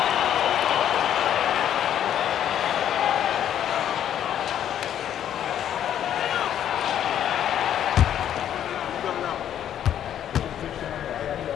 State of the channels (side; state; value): right; quieter; 10.3 dB